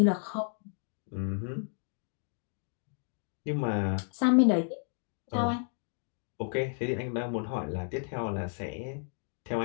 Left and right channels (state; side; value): silent; right; 56 dB below the other